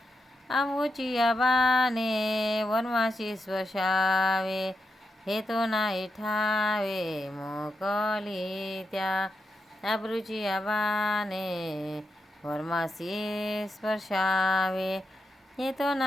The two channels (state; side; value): normal; both; correlation 0.86